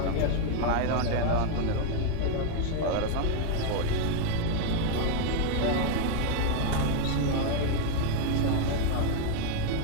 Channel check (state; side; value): different; both; correlation 0.00